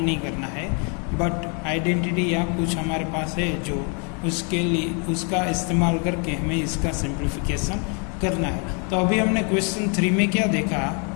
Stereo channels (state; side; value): quieter; right; 37.3 dB